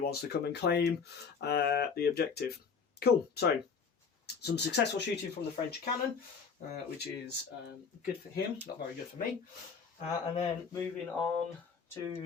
to come and claim the objective. Cool, so some successful shooting from the French cannon, which is good for him, not very good for me. And then moving on to,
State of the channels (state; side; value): quieter; right; 5.8 dB